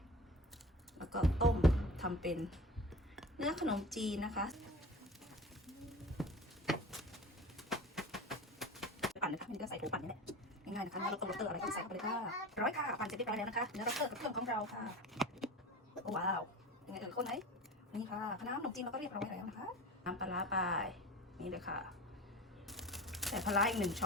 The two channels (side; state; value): both; normal; correlation 0.35